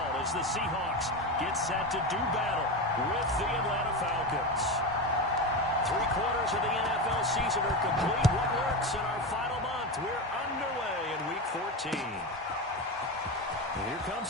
as the Seahawks get set to do battle with the Atlanta Falcons. 3/4 of the NFL season are complete. What lurks in our final month? We're underway in Week 14. And here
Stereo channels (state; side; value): normal; both; correlation 0.19